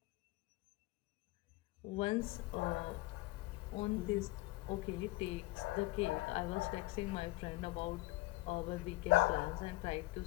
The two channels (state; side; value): quieter; right; 19.9 dB